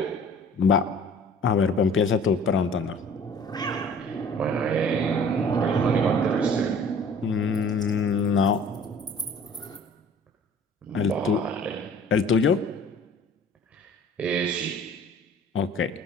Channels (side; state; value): both; normal; correlation 0.49